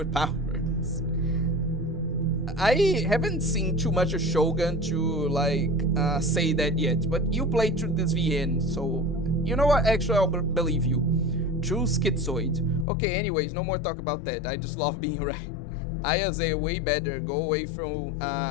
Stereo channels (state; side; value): drops out; right; at 12.9 s